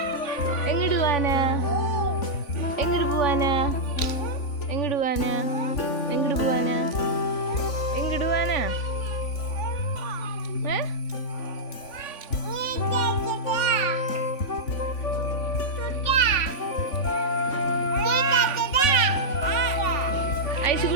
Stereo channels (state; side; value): late; right; 3.5 ms